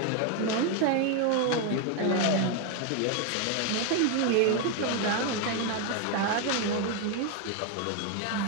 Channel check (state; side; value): different; both; correlation 0.01